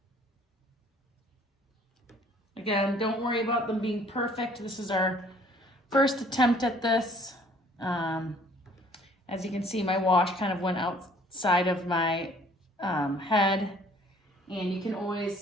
Again, don't worry about them being perfect. This is our first attempt at this. As you can see, my wash kind of went outside of my head, and you can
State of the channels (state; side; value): normal; both; correlation 0.57